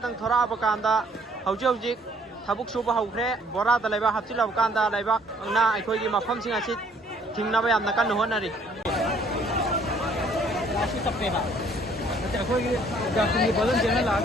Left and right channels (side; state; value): both; normal; correlation 0.61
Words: थोराबकांदा हौजिक थबुक सुबा हौख्रे बोरादा लेबा हप्चिलबकांदा लेबा ना अखोइगी मफमसिंग असि थिंगनबा यामना कन्न होनरी लासि तप्पेबा अखोइगी जाकुनी बलन जेना